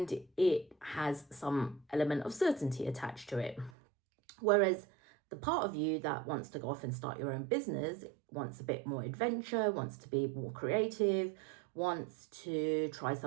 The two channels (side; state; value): left; drops out; at 3.7 s